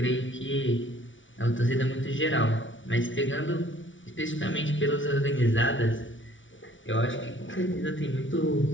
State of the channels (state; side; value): late; right; 0.56 ms